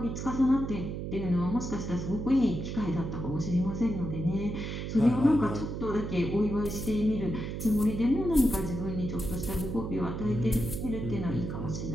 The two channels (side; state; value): right; noise; hum, 5 dB below the sound